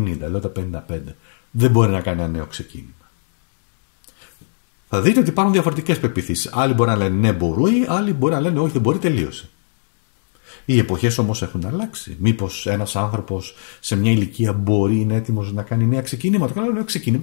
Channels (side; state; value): right; silent; digital silence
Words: λέω τα 55, δεν μπορεί να κάνει ένα νέο ξεκίνημα? Θα δείτε ότι υπάρχουν διαφορετικές πεποιθήσεις. Άλλοι μπορεί να λένε ναι, μπορεί, άλλοι μπορεί να λένε όχι, δεν μπορεί, τελείωσε. Οι εποχές όμως έχουν αλλάξει. Μήπως ένας άνθρωπος σε μια ηλικία μπορεί, είναι έτοιμος να κάνει νέα ξεκινήματα. Καλά, νέο